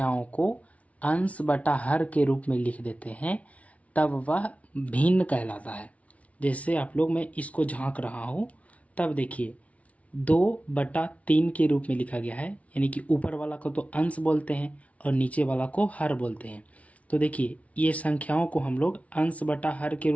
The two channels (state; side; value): late; right; 0.066 ms